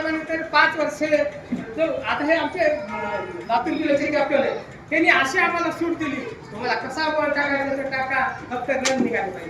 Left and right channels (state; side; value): identical; both; correlation 1.00